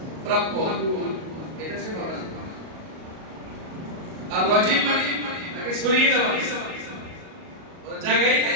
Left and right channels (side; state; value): left; late; 38 ms